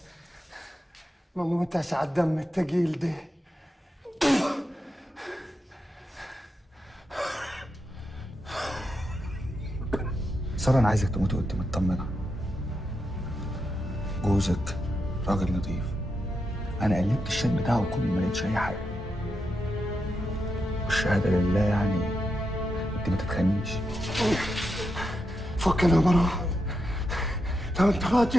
ما موتش على الدم التقيل ده. سارة أنا عايزك تموت وأنت مطمنة. جوزك راجل نظيف. أنا قلبت الشات بتاعه كله ما لقيتش أي حاجة. والشهادة لله يعني أنت ما تتخنيش. فكنا يا مروان، لو أنت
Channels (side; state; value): both; normal; correlation 0.85